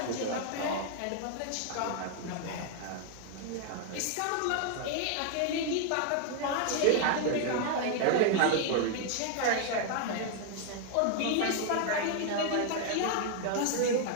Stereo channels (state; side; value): different; both; correlation 0.00